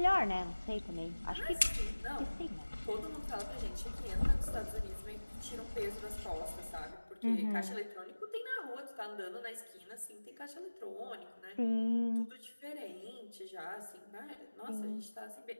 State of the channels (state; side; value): inverted; both; correlation -1.00